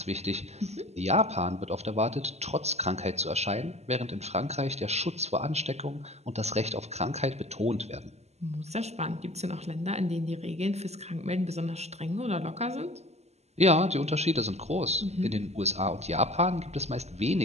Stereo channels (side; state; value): left; late; 0.32 ms